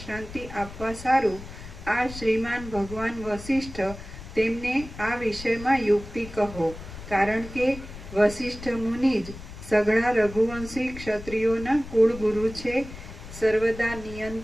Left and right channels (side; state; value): left; noise; rumble, 13 dB below the sound